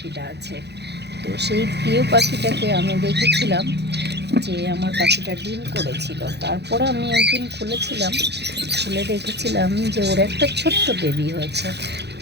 আছে। তো সেই প্রিয় পাখিটাকে আমি দেখেছিলাম যে আমার পাখিটা ডিম করেছিল। তারপরে আমি একদিন খুলেছিলাম, খুলে দেখেছিলাম যে ওর একটা ছোট্ট বেবি হয়েছে।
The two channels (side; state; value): left; late; 0.49 ms